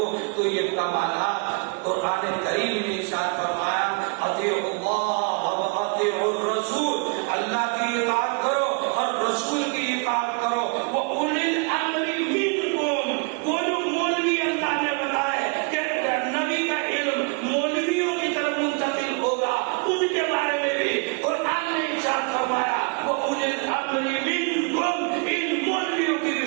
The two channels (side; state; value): left; quieter; 34.6 dB